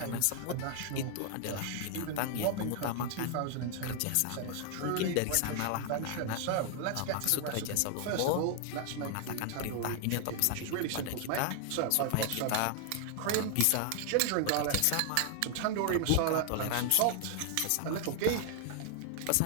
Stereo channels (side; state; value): both; different; correlation 0.00